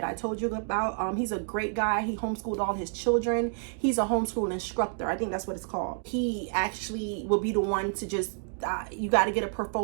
I told you about. He's a great guy. He homeschooled all his children. He's a homeschool instructor. I think that's what it's called. He actually will be the one to just you got to get a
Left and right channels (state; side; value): silent; left; 58 dB below the other